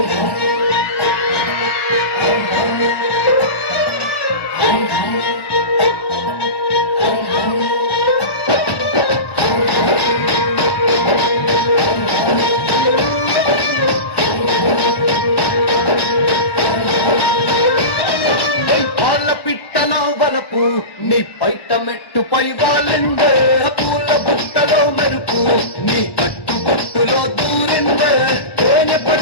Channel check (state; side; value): late; right; 1.1 ms